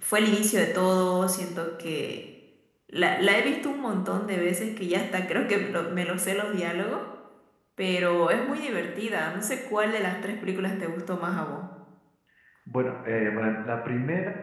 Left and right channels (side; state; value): both; identical; correlation 1.00